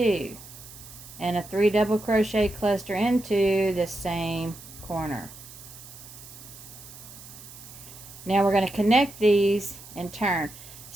and a 3 double crochet cluster into the same corner. Now we're going to connect these and turn.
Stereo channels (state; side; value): noise; right; hiss, 17 dB below the sound